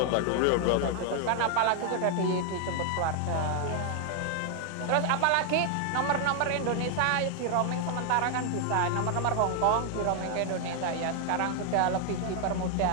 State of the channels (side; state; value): both; different; correlation 0.00